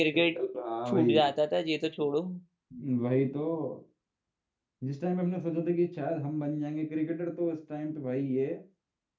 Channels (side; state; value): both; identical; correlation 1.00